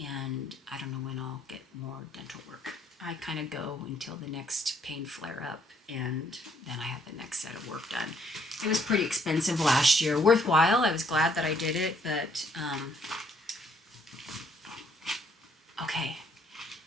And I don't know when I'll get more dental work. I kind of go until the next pain flare up, and then I have the next set of work done. It was pretty expensive last year. Worthwhile. I was glad that I did it, but okay.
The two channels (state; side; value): normal; both; correlation 0.68